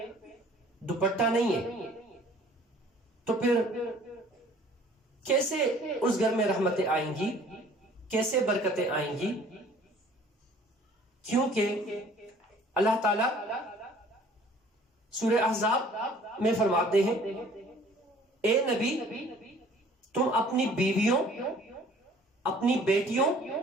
دوپٹہ نہیں ہے، تو پھر کیسے اس گھر میں رحمتیں آئیں گی، کیسے برکتیں آئیں گی؟ کیونکہ اللہ تعالیٰ سورہ احزاب میں فرماتے ہیں، اے نبی تم اپنی بیویوں، اپنی بیٹیوں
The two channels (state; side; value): normal; both; correlation 0.53